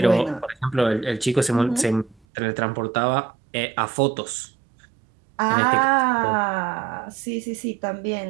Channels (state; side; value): drops out; left; at 2.2 s